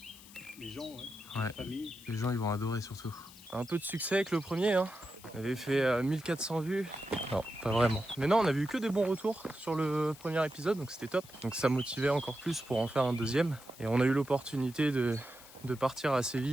Les gens, ouais. Ouais. La famille. Les gens ils vont adorer surtout. Un peu de succès avec le premier hein. On avait fait 1400 vues. Non, pas vraiment. Mais non, on avait eu que des bons retours sur le premier épisode, donc c'était top. Donc ça motivait encore plus pour en faire un deuxième. Et on a eu l'opportunité de partir assez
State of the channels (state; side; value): noise; left; hiss, 20 dB below the sound